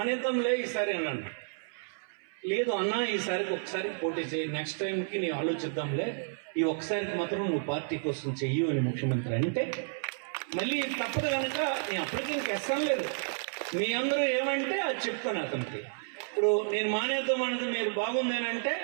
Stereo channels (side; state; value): left; silent; 57 dB below the other